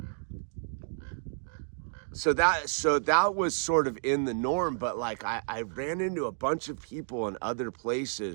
so that was sort of in the norm. But like I ran into a bunch of people in other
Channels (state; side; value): silent; left; digital silence